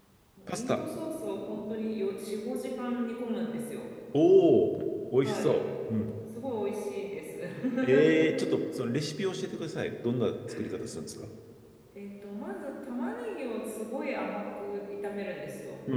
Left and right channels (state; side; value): identical; both; correlation 1.00